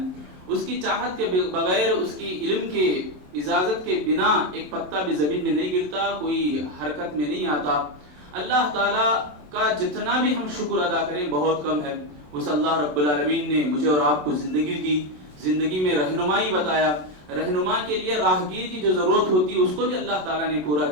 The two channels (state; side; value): late; left; 27 ms